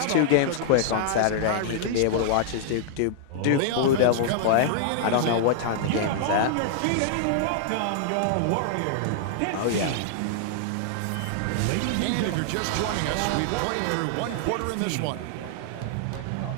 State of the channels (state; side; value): different; both; correlation -0.01